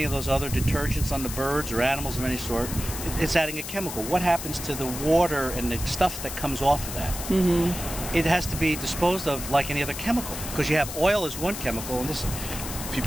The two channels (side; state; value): left; noise; hiss, 8 dB below the sound